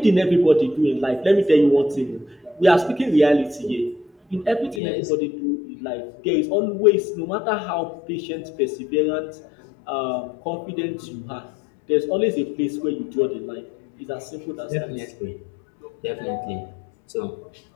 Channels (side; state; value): right; drops out; at 4.8 s